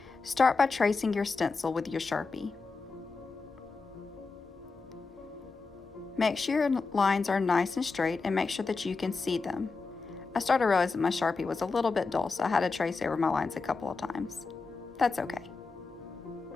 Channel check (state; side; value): quieter; right; 4.3 dB